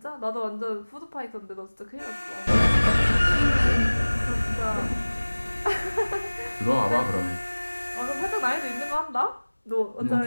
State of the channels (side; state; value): both; inverted; correlation -1.00